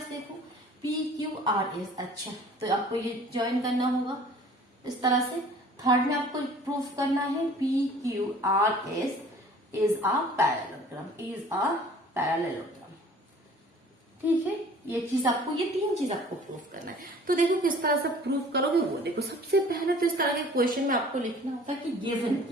देखो पी क्यू आर एस। अच्छा, तो आपको ये ज्वाइन करना होगा इस तरह से। थर्ड में आपको प्रूफ करना है P Q R S is a parallelogram, is a parallelogram. ठीक है, ये चीज आपको, ये 3 चीज आपको प्रूफ करना है। तो देखो किस तरह से प्रूफ करोगे वो देखो। सबसे पहले तो इस तरह के क्वेश्चन में आपको लिखना होता है कि गिवन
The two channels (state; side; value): normal; both; correlation 0.49